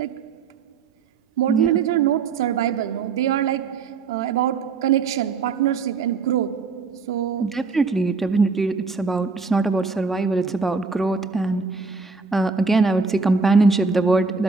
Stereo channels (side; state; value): left; quieter; 4.7 dB